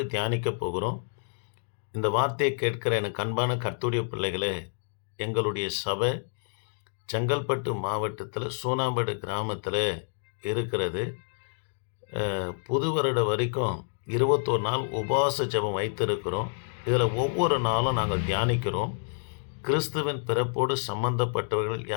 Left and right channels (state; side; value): silent; right; digital silence